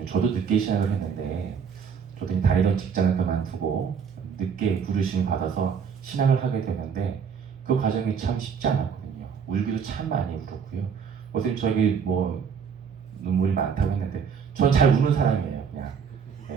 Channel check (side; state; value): left; quieter; 6.7 dB